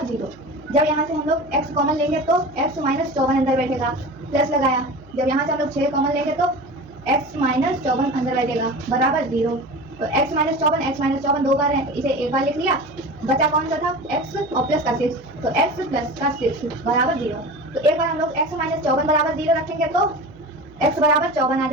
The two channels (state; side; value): noise; right; hum, 24 dB below the sound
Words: 0। जब यहाँ से हम लोग x कॉमन लेंगे तो x माइनस 54 अंदर बैठेगा, प्लस लगाया। जब यहाँ से हम लोग 6 कॉमन लेंगे तो x माइनस 54 अंदर बैठेगा बराबर 0। तो x माइनस 54 दो बार है, तो इसे एक बार लिख लिया। बचा कौन सा था? x और प्लस का 6, तो x प्लस का 6 बराबर 0। तो एक बार हम लोग x माइनस 54 बराबर 0 रखेंगे तो x बराबर 54 आ